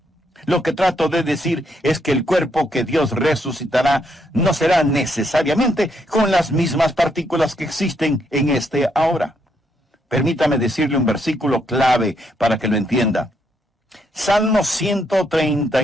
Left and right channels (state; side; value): normal; both; correlation 0.75